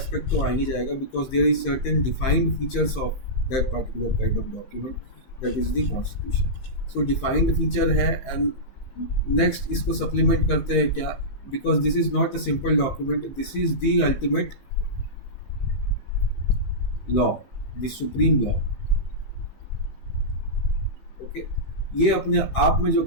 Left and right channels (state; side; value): late; right; 15 ms